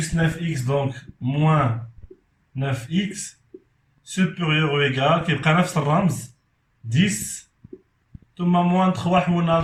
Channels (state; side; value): identical; both; correlation 1.00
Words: 9x, donc moins 9x supérieur ou égal كيبقى نفس الرمز 10 ثم moins 3 حولنا